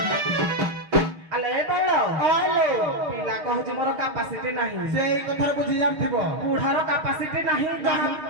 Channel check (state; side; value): late; left; 6.5 ms